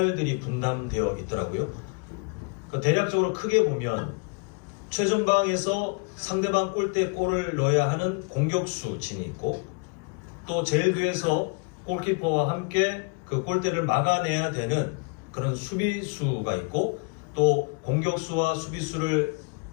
분담되어 있더라고요. 대략적으로 크게 보면 최전방에서 상대방 골대에 골을 넣어야 하는 공격수 진이 있고 또 제일 뒤에서 골키퍼와 함께 그 골대를 막아내야 되는 그런 수비수가 있고 또 공격수와 수비수를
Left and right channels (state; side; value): quieter; right; 34.5 dB